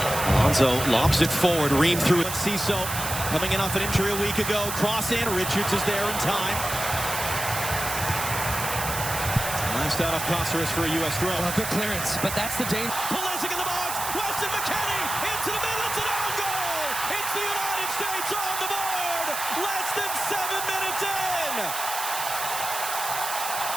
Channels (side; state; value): right; noise; hiss, 4 dB below the sound